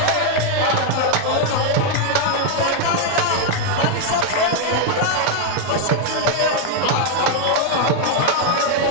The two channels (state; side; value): different; both; correlation 0.00